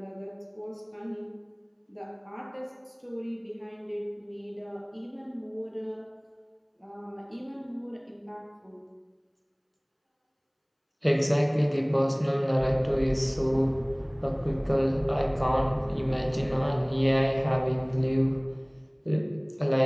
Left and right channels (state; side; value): identical; both; correlation 1.00